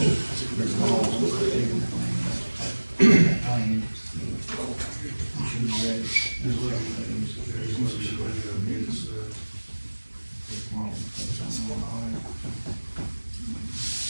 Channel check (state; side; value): inverted; both; correlation -1.00